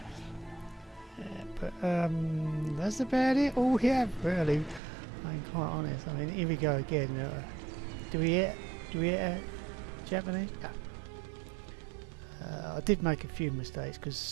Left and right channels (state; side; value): drops out; left; at 4.8 s